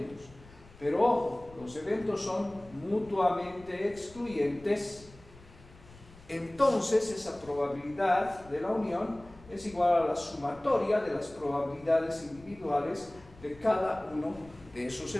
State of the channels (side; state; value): left; noise; rumble, 22 dB below the sound